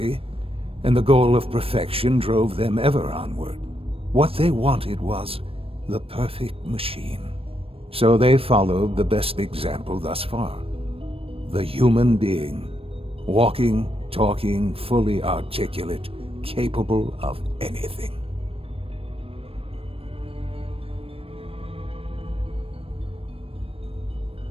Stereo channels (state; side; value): late; left; 0.28 ms